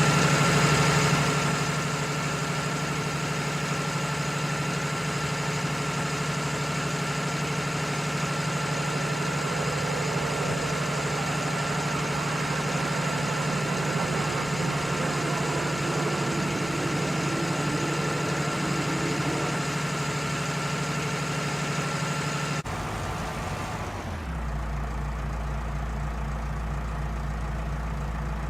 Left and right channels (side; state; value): both; normal; correlation 0.97